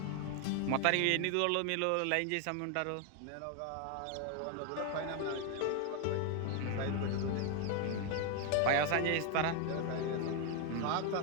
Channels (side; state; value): both; different; correlation 0.01